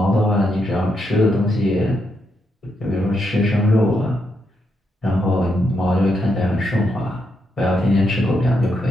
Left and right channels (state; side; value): normal; both; correlation 0.81